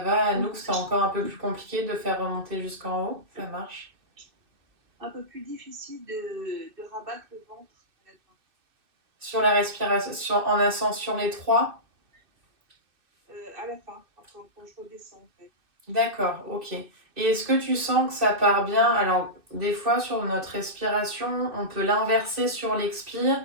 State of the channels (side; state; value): left; late; 2.6 ms